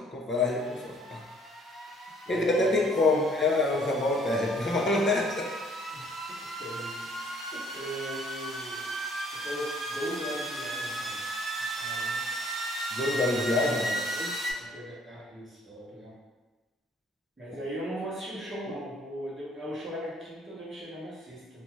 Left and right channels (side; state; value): both; normal; correlation 0.59